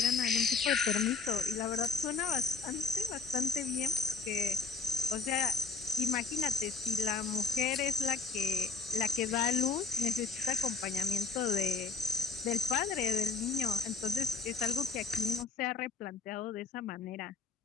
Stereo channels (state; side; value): quieter; right; 4.1 dB